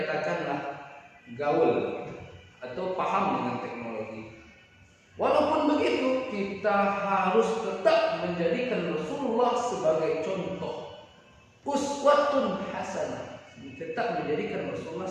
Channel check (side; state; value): both; identical; correlation 1.00